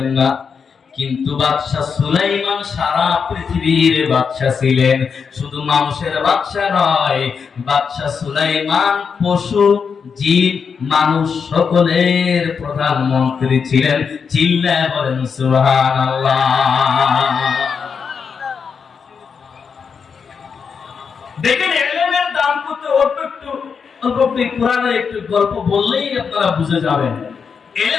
না। কিন্তু বাদশা সুলাইমান সারা পৃথিবীর বাদশা ছিলেন, শুধু মানুষের বাদশা নয়। বাদশা সুলাইমান পশু, জীব, মানুষ সকলের প্রধানমন্ত্রী ছিলেন। চিল্লায় বলেন সুবহানাল্লাহ। দেখেন এলেমের দাম কত। অল্প কোরআনের একটু গল্প বললেই আপনারা বুঝে যাবেন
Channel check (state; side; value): quieter; right; 6.1 dB